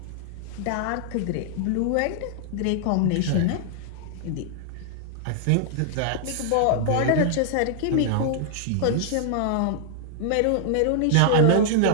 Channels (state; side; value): different; both; correlation -0.01